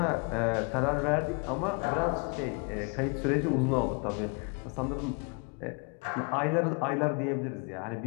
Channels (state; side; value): quieter; right; 34.0 dB